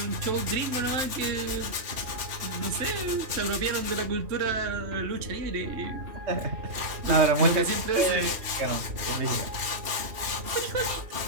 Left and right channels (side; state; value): left; late; 2.7 ms